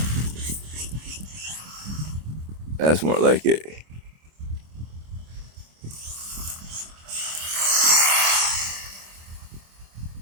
That's more like it.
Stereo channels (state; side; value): late; left; 25 ms